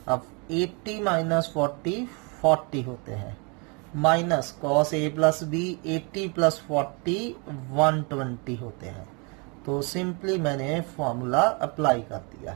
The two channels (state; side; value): quieter; left; 32.5 dB